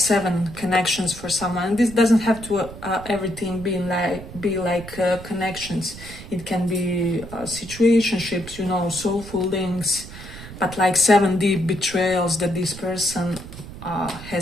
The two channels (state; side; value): noise; right; rumble, 14 dB below the sound